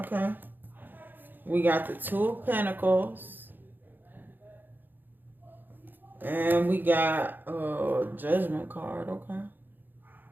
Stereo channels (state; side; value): late; left; 0.091 ms